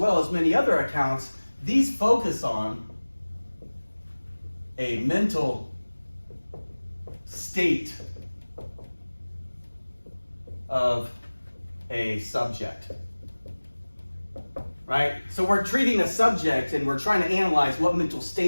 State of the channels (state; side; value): inverted; both; correlation -1.00